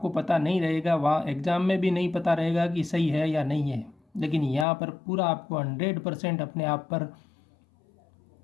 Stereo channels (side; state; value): right; drops out; at 4.7 s